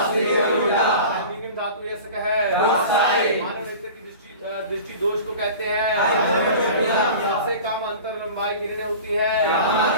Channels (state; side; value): inverted; both; correlation -0.38